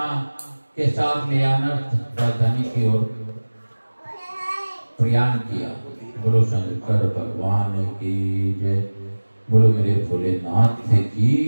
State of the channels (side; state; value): both; inverted; correlation -1.00